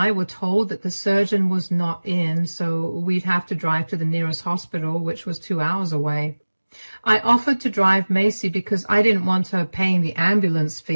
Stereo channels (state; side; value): inverted; both; correlation -1.00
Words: were told that the surgeon was not in, so we'd have to drive to the nearest hospital, which was 2 hours away. I offered to drive Macy because I didn't want her paying the ambulance